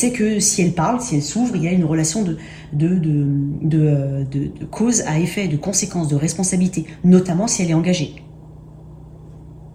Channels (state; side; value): identical; both; correlation 1.00